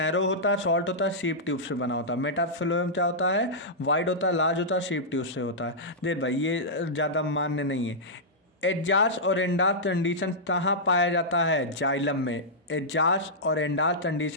होता है, शॉर्ट होता है, शीप ट्यूब से बना होता है। मेटाफ्लोएम क्या होता है? वाइड होता है, लार्ज होता है, शीप ट्यूब से होता है। देख भाई ये ज़्यादा मान्य नहीं है। एजाज और एंडाज कंडीशन कहाँ पाया जाता है? जाइलम में। एजाज और एंडाज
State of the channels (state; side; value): normal; both; correlation -0.11